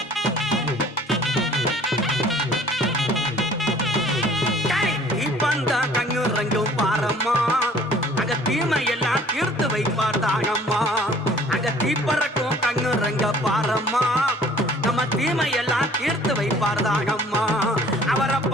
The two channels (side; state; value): both; normal; correlation 0.53